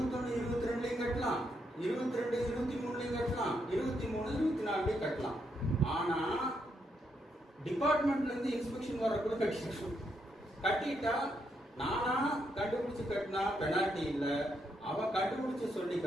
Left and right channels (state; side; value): normal; both; correlation 0.78